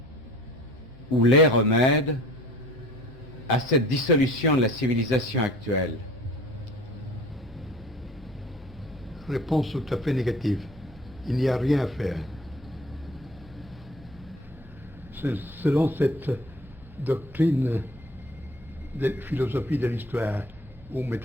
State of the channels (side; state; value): both; normal; correlation 0.46